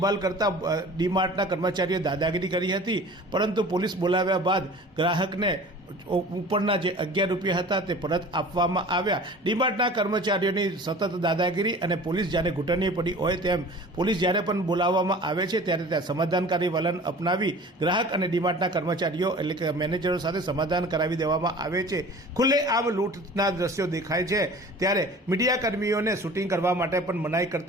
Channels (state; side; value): normal; both; correlation 0.42